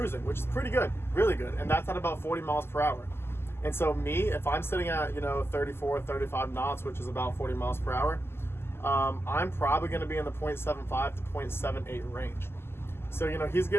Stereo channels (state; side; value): late; right; 0.12 ms